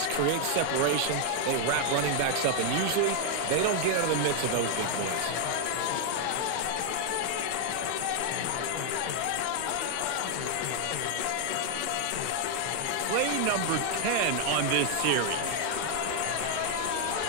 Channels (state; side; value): different; both; correlation 0.00